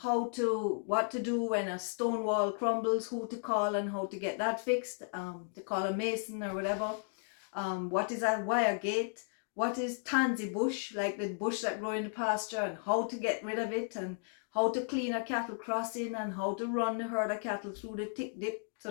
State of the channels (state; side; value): silent; right; 55 dB below the other